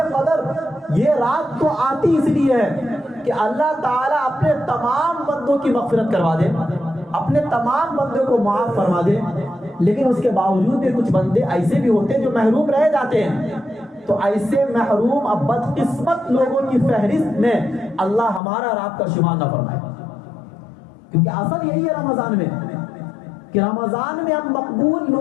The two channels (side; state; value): right; drops out; at 18.4 s